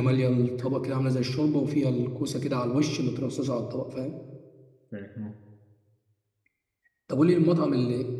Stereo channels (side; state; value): both; identical; correlation 1.00